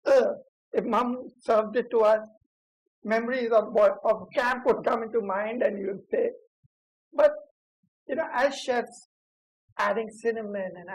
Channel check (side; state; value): both; identical; correlation 1.00